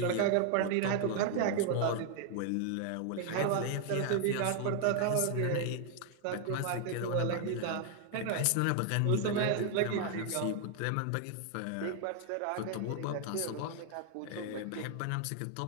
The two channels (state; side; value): different; both; correlation 0.00